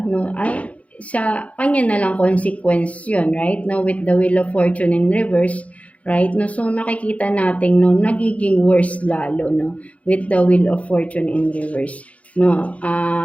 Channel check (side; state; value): right; late; 0.065 ms